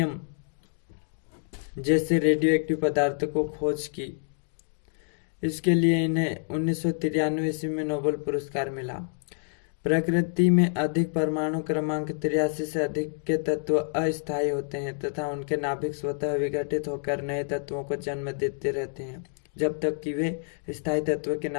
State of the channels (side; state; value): right; silent; digital silence